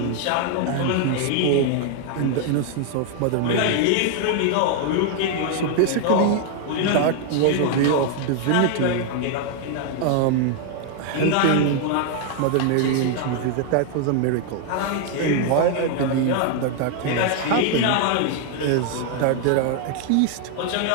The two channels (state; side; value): different; both; correlation 0.00